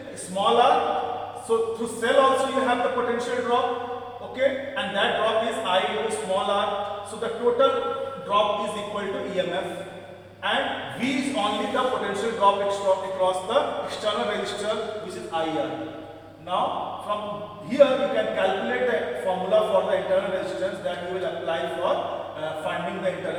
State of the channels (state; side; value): identical; both; correlation 1.00